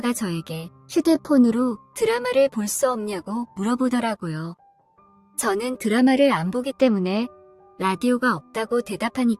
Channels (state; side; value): identical; both; correlation 1.00